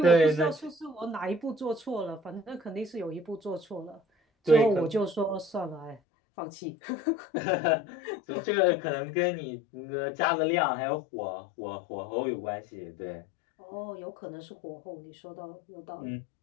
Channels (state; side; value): drops out; right; at 6.0 s